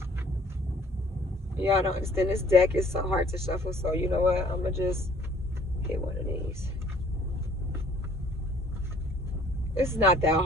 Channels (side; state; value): both; normal; correlation 0.56